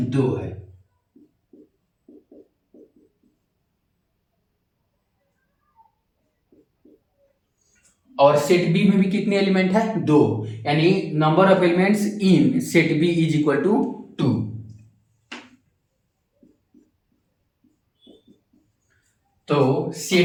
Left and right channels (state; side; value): identical; both; correlation 1.00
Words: 2 है। और सेट बी में भी कितने एलिमेंट है, 2, यानी number of elements in set B is equal to 2। तो